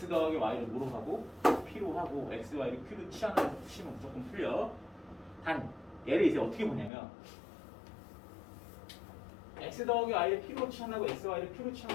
더하기 y를 뭐로 하고 p로 하고 x, y를 q로 치환해서 푸시면 무조건 풀려. 단 얘를 이제 어떻게 보냐면 x 더하기 y를 p로 치환하고 x, y를 q로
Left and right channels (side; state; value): right; drops out; at 6.9 s